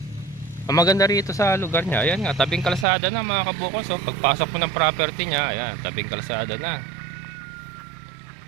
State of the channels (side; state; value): left; drops out; at 2.9 s